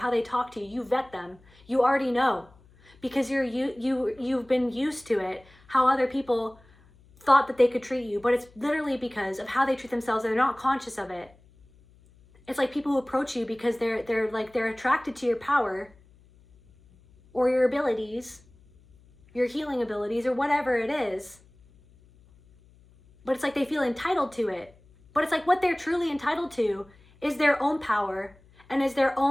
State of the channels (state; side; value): noise; left; hum, 28 dB below the sound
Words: they talk to you. You vet them. You already know because you've been used to it, how other people thought that they could treat you, but it's literally because of how they treat themselves. They're not conscious of it. It's like people who approach you because they're attracted to your power or your abilities, your healing abilities, or whatever it is. But it's like they feel entitled to it. But it's like what they're truly entitled to is their own power and is their